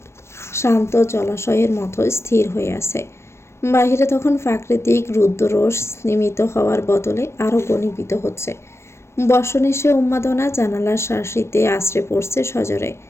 শান্ত জলাশয়ের মতো স্থির হয়ে আছে। বাহিরে তখন প্রাকৃতিক রুদ্ররোষ স্নিমিত হওয়ার বদলে আরও ঘনীভূত হচ্ছে। বর্ষণেসে উন্মাদনা জানালার শাসিতে আশ্রে পড়ছে সজরে।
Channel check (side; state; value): right; late; 0.13 ms